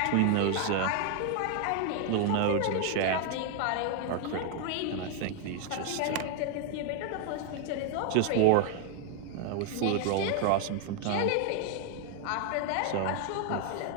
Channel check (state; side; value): different; both; correlation 0.00